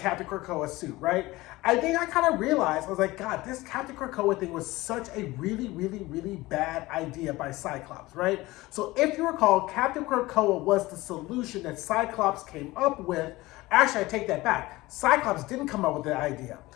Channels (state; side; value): quieter; right; 19.6 dB